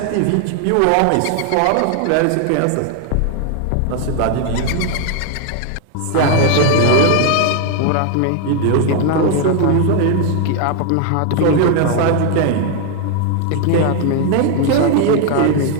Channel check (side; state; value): both; different; correlation 0.00